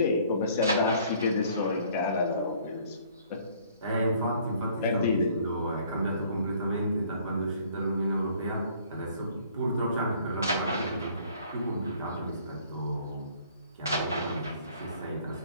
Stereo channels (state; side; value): inverted; both; correlation -0.58